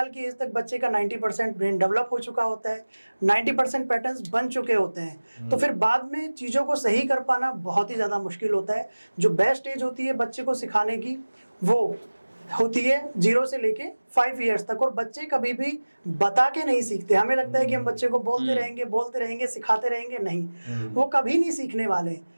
की एज तक बच्चे का 90% ब्रेन डेवलप हो चुका होता है, 90% पैटर्न्स बन चुके होते हैं। तो फिर बाद में चीज़ों को सही कर पाना बहुत ही ज़्यादा मुश्किल होता है। जो बेस्ट एज होती है बच्चे को सिखाने की, वो होती है 0 से लेके 5 ईयर्स तक। और बच्चे कभी भी बता के नहीं सीखते। हमें लगता है कि हम बच्चे को बोलते रहेंगे, सिखाते रहेंगे, नहीं, वो कभी नहीं सीखने वाले।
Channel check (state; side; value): inverted; both; correlation -1.00